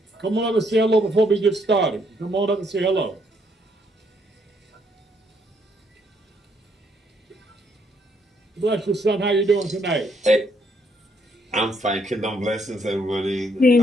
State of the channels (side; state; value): both; normal; correlation 0.71